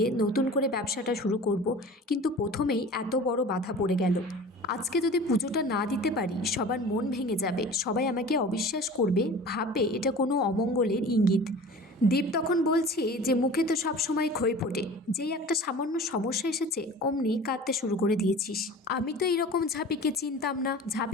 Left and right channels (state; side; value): normal; both; correlation 0.40